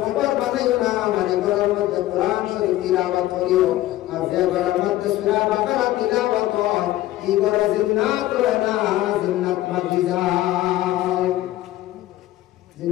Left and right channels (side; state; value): right; quieter; 15.2 dB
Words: খবর বানাইও না মানে ঘরের মধ্যে কোরআন শরীফ তিলাওয়াত করিও আর যে ঘরের মধ্যে সূরা বাকারা তিলাওয়াত হয় এই ঘরে জিন্নাত রয় না জিন্নাত বাকি যায়